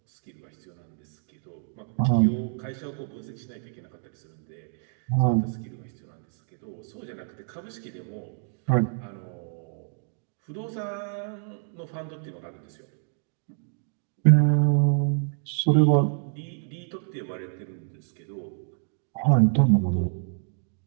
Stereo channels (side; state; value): left; silent; digital silence